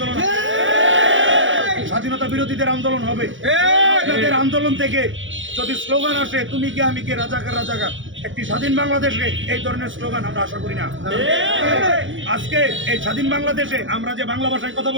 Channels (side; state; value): left; late; 0.56 ms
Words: স্বাধীনতা বিরোধীদের আন্দোলন হবে। আপনাদের আন্দোলন থেকে যদি স্লোগান আসে, তুমি কে আমি কে, রাজাকার রাজাকার, একটি স্বাধীন বাংলাদেশে এই ধরনের স্লোগান আমরা আশা করি না। আজকে এই স্বাধীন বাংলাদেশে আমরা যে বাংলা ভাষায় কথা